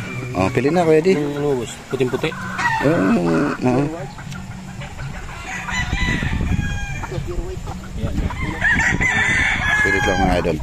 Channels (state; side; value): identical; both; correlation 1.00